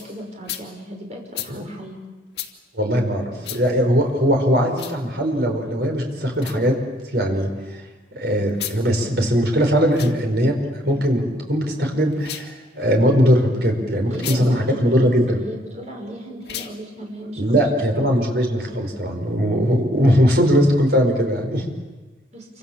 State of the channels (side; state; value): both; normal; correlation 0.64